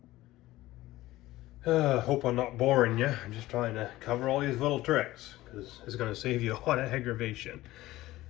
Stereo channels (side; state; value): right; quieter; 16.9 dB